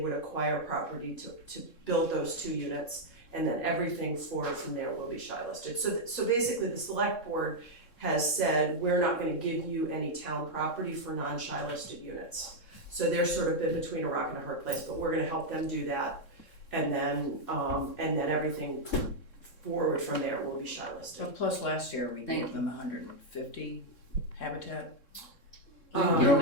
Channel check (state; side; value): late; right; 3.7 ms